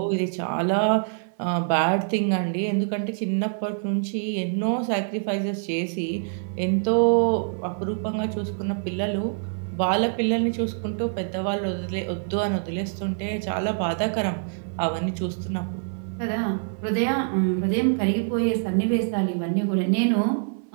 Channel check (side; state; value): left; silent; 62 dB below the other